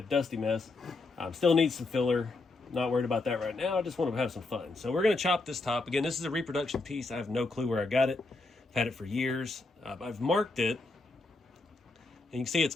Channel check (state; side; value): quieter; right; 3.4 dB